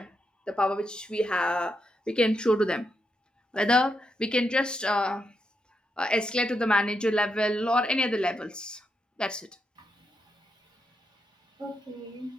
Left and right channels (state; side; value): normal; both; correlation 0.83